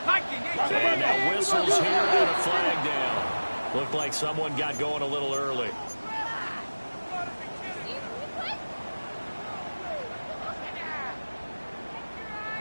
Mikey, 18. Now whistles here and a flag down. Looked like someone got going a little early.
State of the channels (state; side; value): inverted; both; correlation -1.00